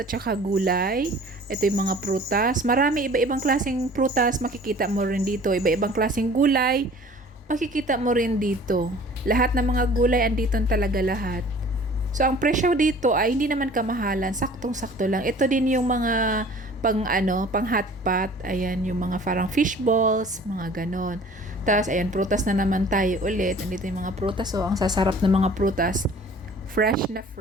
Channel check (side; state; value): both; normal; correlation 0.48